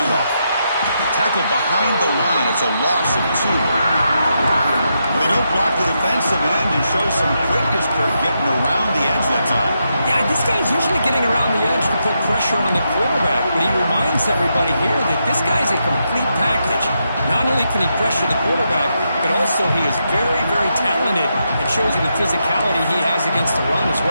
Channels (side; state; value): both; inverted; correlation -0.83